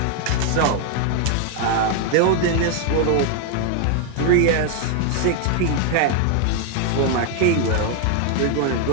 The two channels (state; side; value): different; both; correlation 0.00